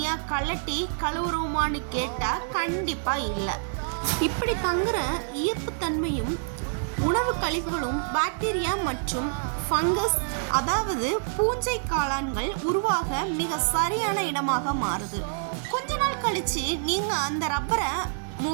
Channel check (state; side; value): silent; left; digital silence